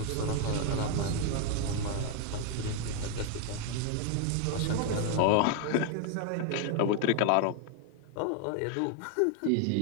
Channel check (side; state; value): both; different; correlation 0.00